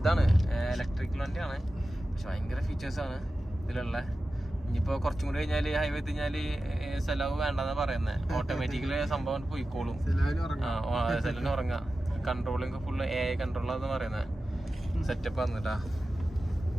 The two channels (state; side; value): normal; both; correlation 0.94